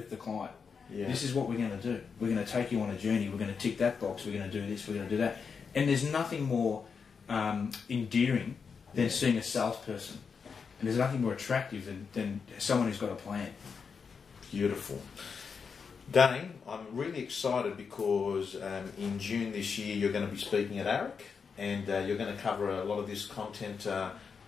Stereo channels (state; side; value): quieter; right; 5.8 dB